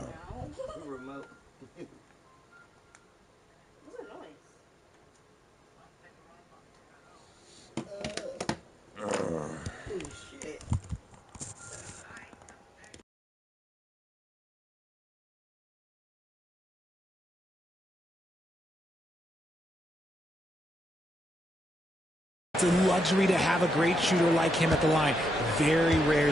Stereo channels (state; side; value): normal; both; correlation 0.82